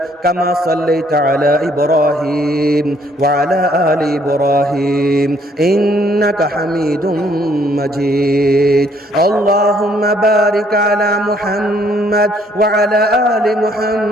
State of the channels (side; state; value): both; normal; correlation 0.65